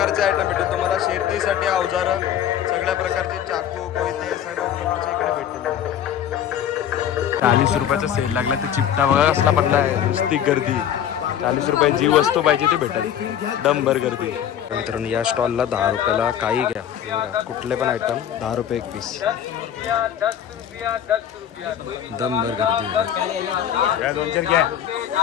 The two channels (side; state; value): right; quieter; 9.9 dB